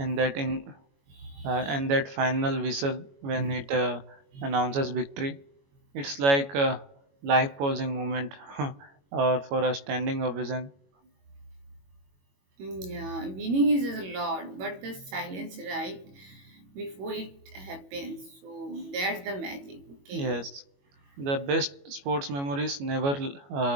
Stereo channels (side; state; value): left; late; 21 ms